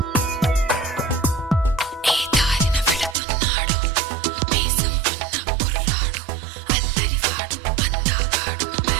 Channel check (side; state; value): left; drops out; at 3.2 s